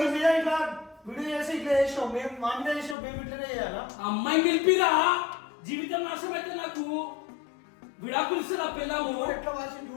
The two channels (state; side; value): drops out; right; at 3.0 s